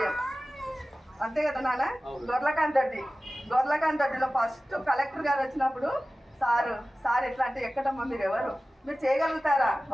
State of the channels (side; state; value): both; normal; correlation 0.96